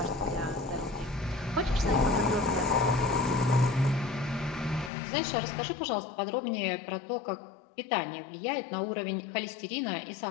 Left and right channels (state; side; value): drops out; right; at 4.9 s